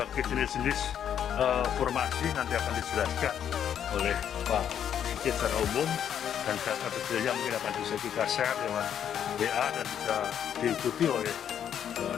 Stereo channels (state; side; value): quieter; right; 9.2 dB